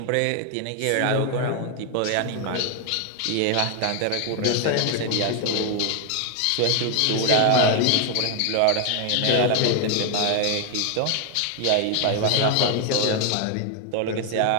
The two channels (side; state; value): both; different; correlation 0.01